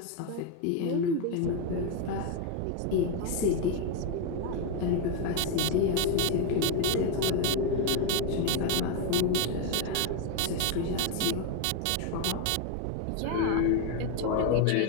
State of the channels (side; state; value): both; different; correlation 0.02